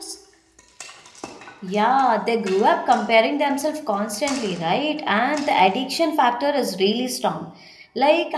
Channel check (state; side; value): identical; both; correlation 1.00